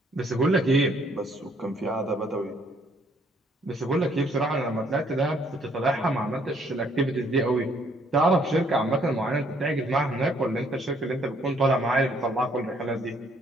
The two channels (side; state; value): both; normal; correlation 0.66